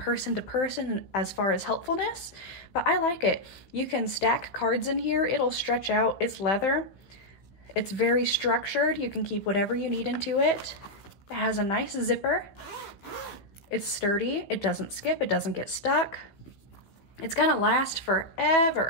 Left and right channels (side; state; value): right; late; 16 ms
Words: to person as far as helpfulness, but I like it. You can stack cards in here, it'll stretch out, it's leather. It's very structured, you can keep whatever you need into it. It has a nice zipper. It's sturdy, it doesn't skip, it doesn't get stuck. It's gonna last